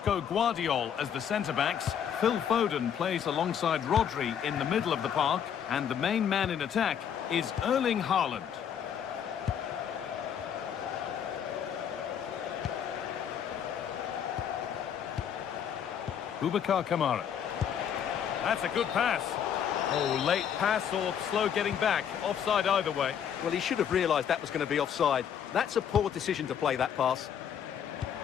Guardiol as the centre-backs. Phil Foden plays alongside Rodri in the middle of the park. And the main man in attack is Erling Haaland. Boubacar Kamara. That's a good pass. Oh, late pass or slow getting back. Offside either way. Well, he should have realised that was going to be offside. That's a poor decision to play that pass.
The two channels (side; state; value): right; quieter; 8.5 dB